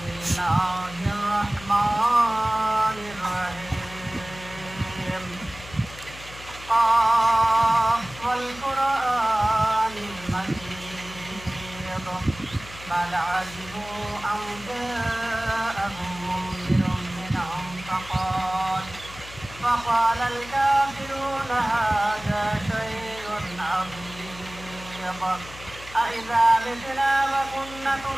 بل عجبوا أن جاءهم منذر منهم فقال الكافرون هذا شيء عظيم أإذا متنا وكنا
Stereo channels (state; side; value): noise; left; hum, 16 dB below the sound